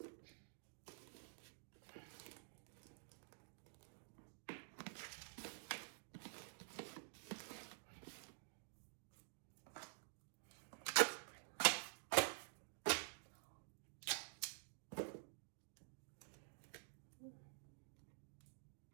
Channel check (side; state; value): left; silent; digital silence